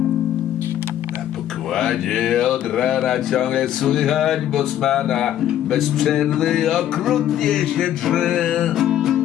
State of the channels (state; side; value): quieter; right; 11.5 dB